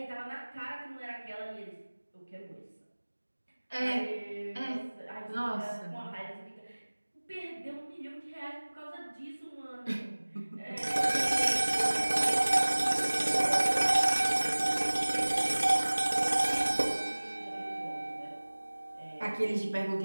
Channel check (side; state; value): both; inverted; correlation -1.00